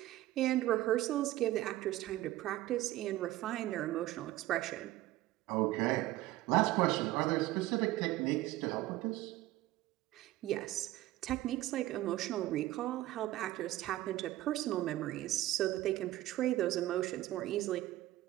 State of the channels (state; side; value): quieter; left; 16.1 dB